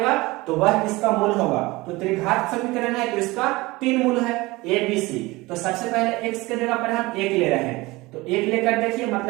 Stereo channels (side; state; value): left; quieter; 21.5 dB